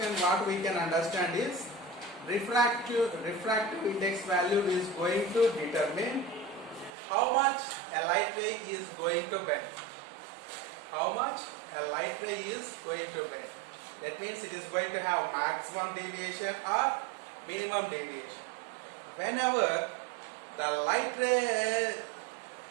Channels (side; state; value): left; drops out; at 6.9 s